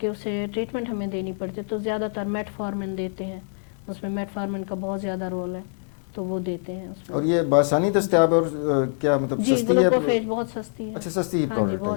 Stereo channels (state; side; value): silent; right; 62 dB below the other